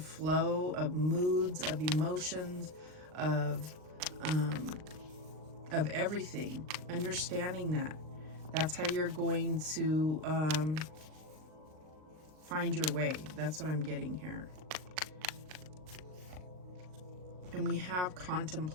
of moods, of emotions, of everything. Understanding that. That's how you're going to find your way. That's what I'm getting here. And we have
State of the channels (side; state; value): left; late; 39 ms